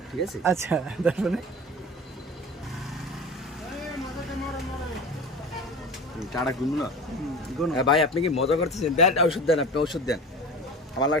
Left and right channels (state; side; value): normal; both; correlation 0.33